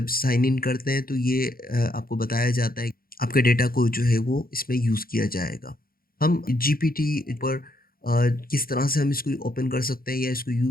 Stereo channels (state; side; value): late; right; 0.42 ms